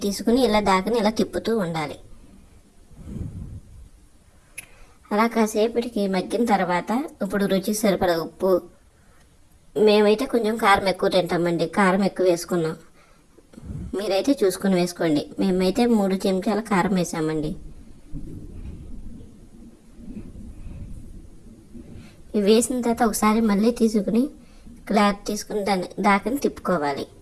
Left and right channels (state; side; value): identical; both; correlation 1.00